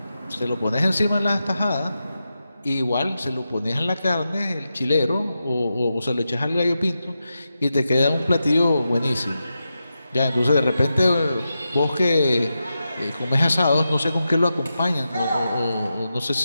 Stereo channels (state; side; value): inverted; both; correlation -0.90